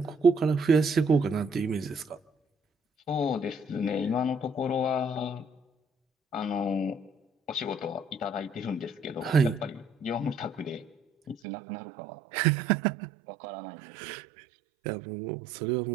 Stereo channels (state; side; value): drops out; left; at 11.4 s